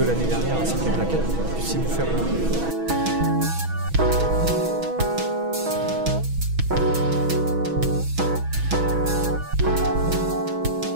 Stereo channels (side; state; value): left; late; 6.2 ms